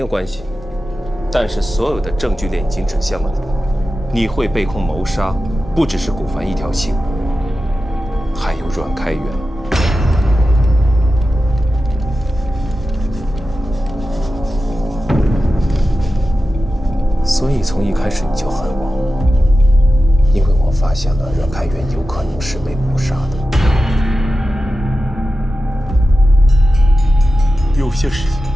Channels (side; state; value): both; normal; correlation 0.93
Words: 关系，但是所有的证据链已经指向了你。你会被控谋杀，不只是古凡一条心，还有阮开元。所以从一开始你就恨我，因为我发现了阮开元有可能是被谋杀的。有些事情